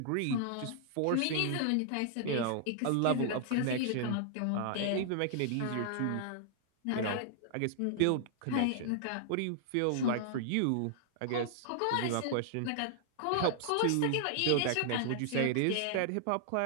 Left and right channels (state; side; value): different; both; correlation -0.01